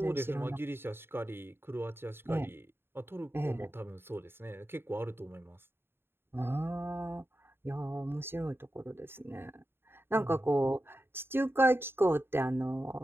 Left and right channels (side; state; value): left; late; 0.11 ms